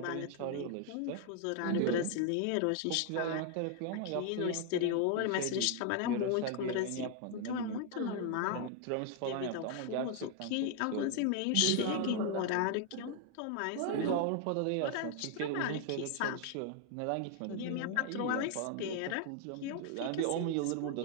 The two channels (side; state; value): both; different; correlation 0.00